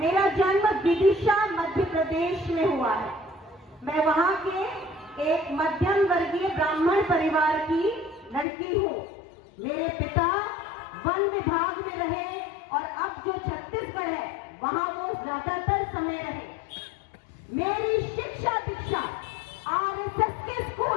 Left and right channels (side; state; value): right; drops out; at 8.5 s